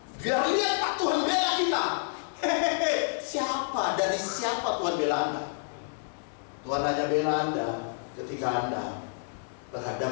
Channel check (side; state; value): right; silent; 59 dB below the other